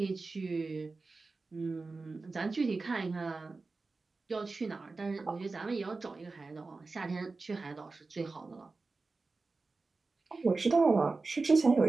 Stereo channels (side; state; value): left; quieter; 3.8 dB